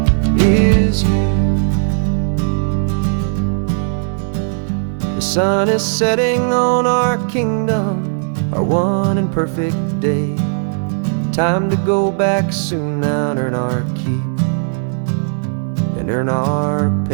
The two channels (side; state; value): left; silent; 68 dB below the other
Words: is you. The sun is setting on our kingdom, our one and perfect day. Time to go back soon now and earn our keep and earn our